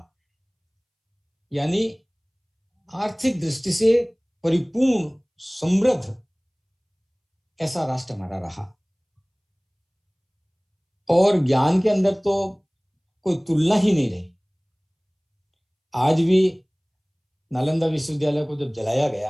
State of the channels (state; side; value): identical; both; correlation 1.00